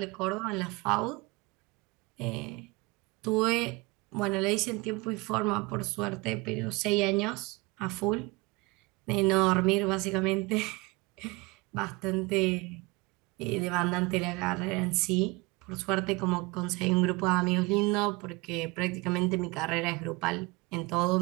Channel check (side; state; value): left; quieter; 24.6 dB